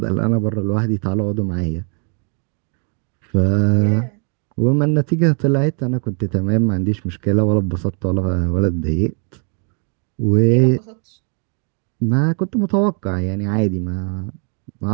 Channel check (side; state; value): left; quieter; 38.6 dB